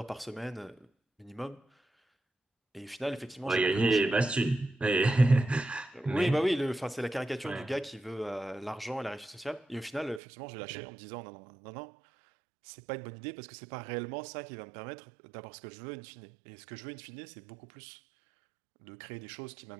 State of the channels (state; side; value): drops out; left; at 10.2 s